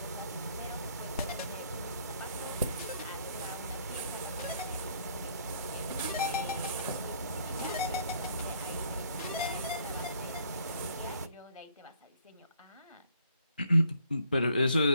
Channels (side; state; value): both; inverted; correlation -0.65